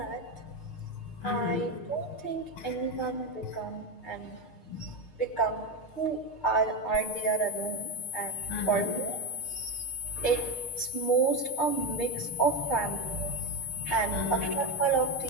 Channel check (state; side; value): late; right; 6.5 ms